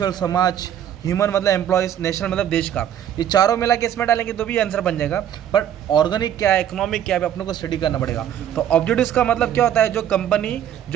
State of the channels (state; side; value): quieter; left; 10.3 dB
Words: समाज, ह्यूमन मतलब एम्प्लॉयज़, नेशनल मतलब देश का। ये चारों मिला के इसमें डालेंगे तो भी आंसर बन जाएगा। पर ऑर्गेनिक क्या है, इकोनॉमिक क्या है, अपने को स्टडी करना पड़ेगा। तो ऑब्जेक्टिव्स का मतलब क्या होता है, जो कंपनी